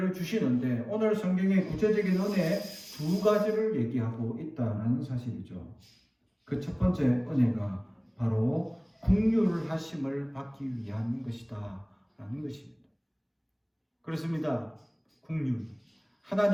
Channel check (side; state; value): both; identical; correlation 1.00